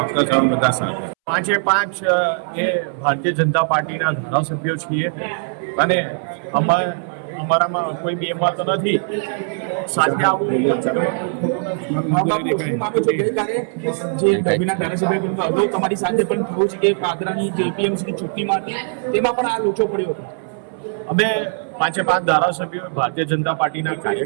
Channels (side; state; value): left; silent; 66 dB below the other